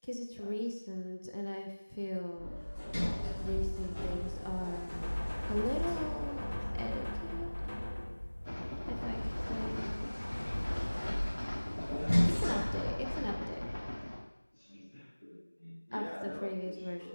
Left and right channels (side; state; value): both; inverted; correlation -1.00